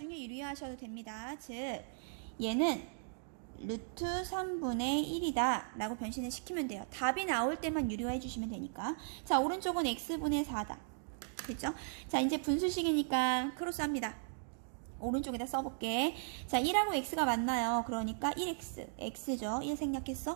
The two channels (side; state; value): left; silent; digital silence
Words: 유리화하셔도 됩니다. 즉 얘는 루트 3분의 1이다 라고 변신을 시키면 돼요. 답이 나올 때만 유리화해 주시면 되니까. 자, 오른쪽은 x분의 4다. 그죠? 자, 이제 분수식이니까 크로스합니다. 오른쪽에다 써볼게. 자, 1하고 x가 만나요. 그러니까 1x, x죠. 1